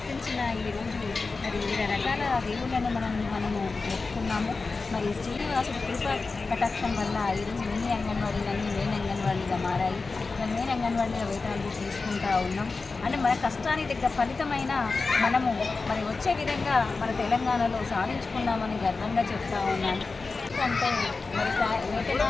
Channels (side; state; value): right; quieter; 4.0 dB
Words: ఈరోజు మరి వివిధ రకాల దేవుళ్ళను మనము మొక్కుకున్నాము. మరి శ్రీనివాసుడు కృప కటాక్షం వల్ల ఈరోజు మినీ అంగన్వాడీలన్నీ మెయిన్ అంగన్వాడీగా మారాయి. మరి మెయిన్ అంగన్వాడీల వేతనాలు తీసుకుంటూ ఉన్నాం. అంటే మన కష్టానికి దగ్గర ఫలితమైన మనము మరి వచ్చే విధంగా మన తెలంగాణలో సాధించుకున్నామని గర్వంగా చెప్తా ఉన్నాను. అంటే మరి